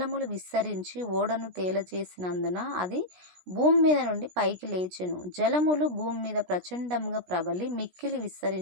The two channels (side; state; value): left; late; 17 ms